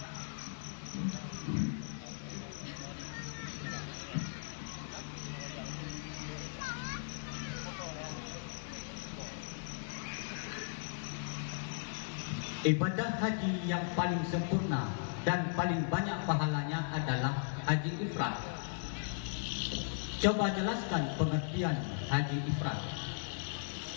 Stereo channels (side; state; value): right; silent; digital silence